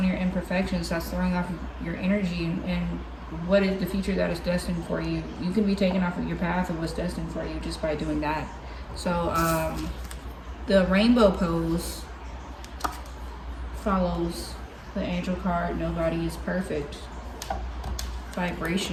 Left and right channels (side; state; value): both; identical; correlation 1.00